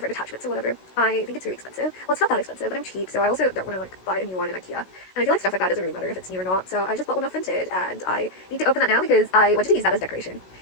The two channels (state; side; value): late; right; 16 ms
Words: attachments or whatever. I think it's really expensive. Well, it's not that expensive, but I'm cheap, so I also don't want to like buy a new one in IKEA. And I feel like stuff like that doesn't really matter if it's new or not. So I just bought one off Vinted, and I need to open that now because I wanted to use that as decoration.